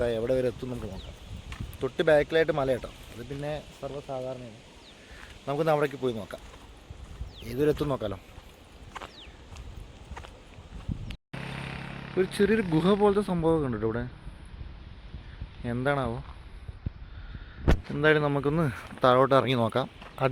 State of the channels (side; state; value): both; identical; correlation 1.00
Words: എവിടെ വരെ എത്തും നമുക്ക് നോക്കാം. തൊട്ട് ബാക്കിലായിട്ട് മല കേട്ടോ, അത് പിന്നെ സർവ്വസാധാരണയാണ്. നമുക്കൊന്ന് അവിടേക്ക് പോയി നോക്കാം, ഏതൊരു എത്തും നോക്കാമല്ലോ. ഒരു ചെറിയൊരു ഗുഹ പോലത്തെ സംഭവമൊക്കെ ഉണ്ട് ഇവിടെ, എന്താണാവോ. എന്തായാലും നമുക്കൊന്ന് താഴോട്ട് ഇറങ്ങി നോക്കാം.